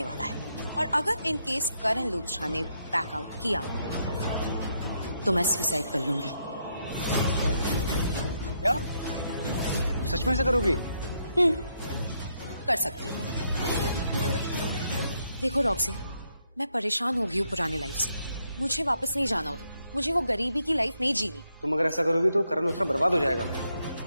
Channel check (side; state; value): both; inverted; correlation -0.77